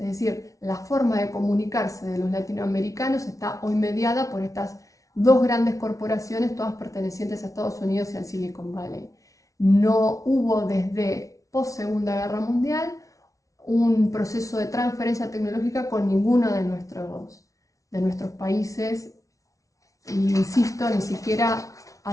decir, la forma de comunicarse de los latinoamericanos está hoy mediada por estas dos grandes corporaciones, todas pertenecientes a Estados Unidos y al Silicon Valley. No hubo desde post-Segunda Guerra Mundial un proceso de transferencia tecnológica con ninguno de nuestros países, y insisto, ni siquiera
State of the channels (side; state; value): right; late; 0.16 ms